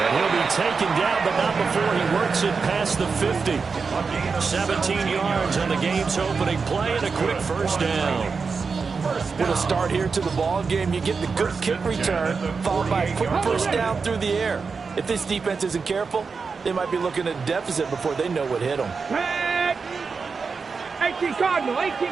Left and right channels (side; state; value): left; quieter; 5.0 dB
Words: he'll be taken down, but not before he works it past the 50. 17 yards on the game's opening play and a quick first down. With a start here to the ball game, you get the good kick return, followed by a quick first down through the air. If this defense isn't careful, they might be looking at a deficit before they know what hit them. 18 Cardinal,